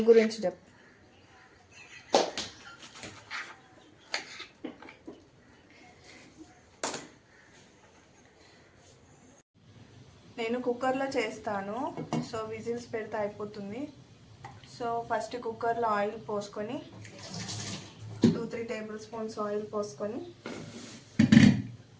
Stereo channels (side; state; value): both; identical; correlation 1.00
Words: గురించి నేను కుక్కర్లో చేస్తాను. విజిల్స్ పెడితే అయిపోతుంది. ఫస్ట్ కుక్కర్లో ఆయిల్ పోసుకొని 2-3 టేబుల్ స్పూన్స్ ఆయిల్ పోసుకొని